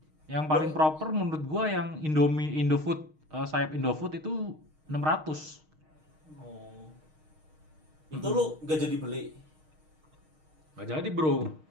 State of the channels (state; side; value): late; left; 6.4 ms